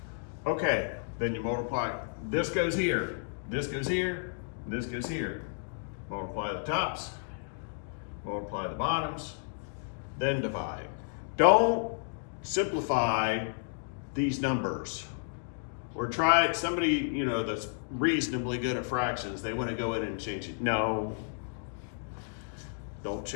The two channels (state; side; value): silent; right; digital silence